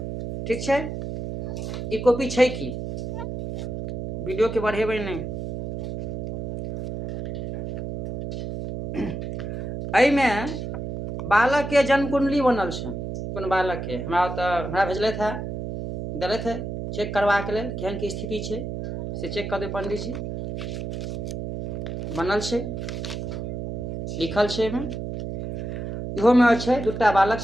ठीक छै। ई कॉपी छै कि वीडियो के बढ़ेबै नहीं। एहिमे बालक के जन्म कुंडली बनल छै। कोन बालक के हमरा भेजलथि है, देलथि है चेक करवा के लेल केहन की स्थिति छै से चेक कर दे पंडित जी। बनल छै, लिखल छै एहिमे। इहो में छै दूटा बालक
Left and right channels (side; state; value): right; noise; hum, 5 dB below the sound